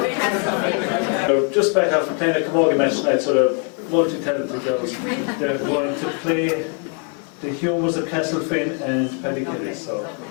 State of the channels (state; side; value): quieter; right; 39.5 dB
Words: They're just back after playing a camogie match tonight, so they're multi-talented girls. They're going to play the Humours of Castlefin and Paddy Kelly, so